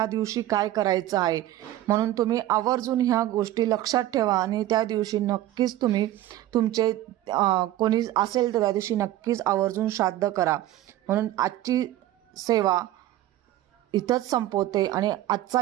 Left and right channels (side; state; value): left; quieter; 14.1 dB